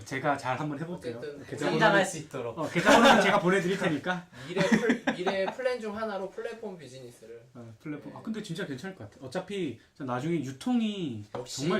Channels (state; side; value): identical; both; correlation 1.00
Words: 제가 잘 한번 해볼게요. 어쨌든 성장할 수 있도록. 계좌번호는 제가 보내드릴 테니까. 미래 플랜 중 하나로 플랫폼 비즈니스를. 플랫폼. 근데 진짜 괜찮을 것 같아. 어차피 나중에 유통이 역시